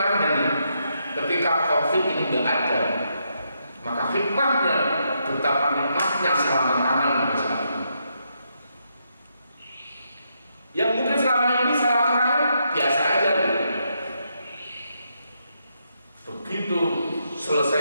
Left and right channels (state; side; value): inverted; both; correlation -0.79